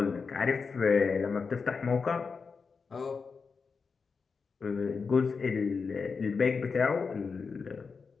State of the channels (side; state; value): right; quieter; 5.1 dB